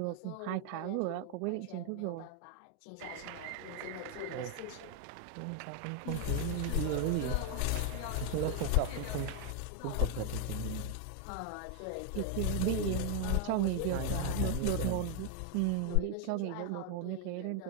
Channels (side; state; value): both; different; correlation 0.00